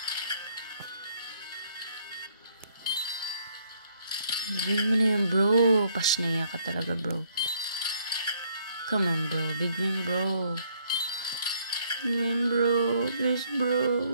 Big win mo na yan, bro. Pasnaya ka talaga, bro. Come on, bro. Big win, bro. Big win, bro. Please, bro.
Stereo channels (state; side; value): inverted; both; correlation -0.67